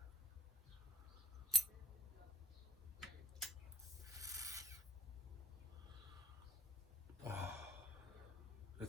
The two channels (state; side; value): normal; both; correlation 0.47